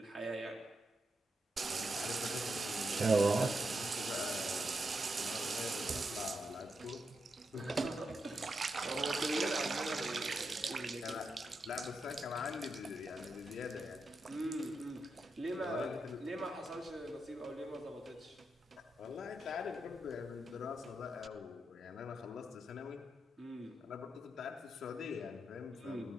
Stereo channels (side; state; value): both; normal; correlation 0.86